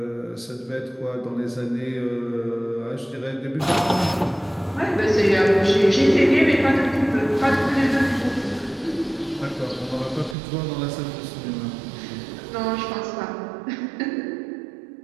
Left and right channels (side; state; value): left; drops out; at 10.4 s